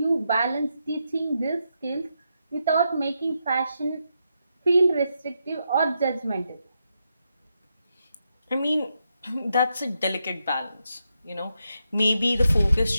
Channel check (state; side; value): inverted; both; correlation -0.84